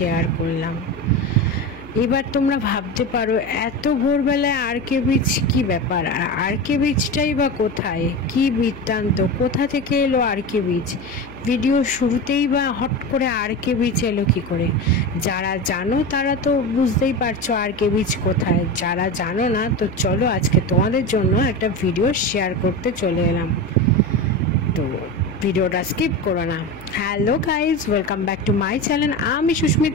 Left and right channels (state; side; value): noise; left; hum, 21 dB below the sound